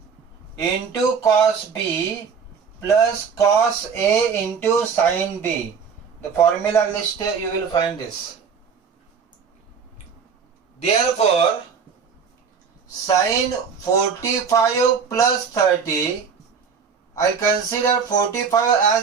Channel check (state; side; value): quieter; left; 6.1 dB